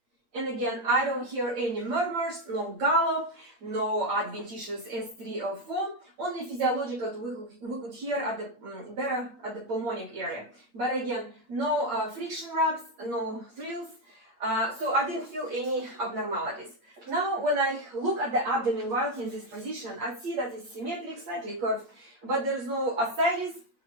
And again, I don't hear any murmurs, no gallop, no adventitious S3 or 4. Only physiological we could hear at the better at the pulmonic area. But again, no friction rubs, no thrills. So I didn't feel any abnormalities. Now, when I look at the abdomen while in this position, I see that it's symmetric, slightly curved, but there is no ascites,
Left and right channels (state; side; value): late; left; 8.6 ms